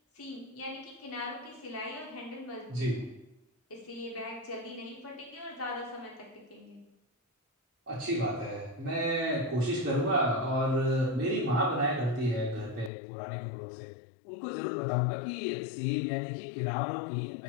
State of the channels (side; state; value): right; drops out; at 12.9 s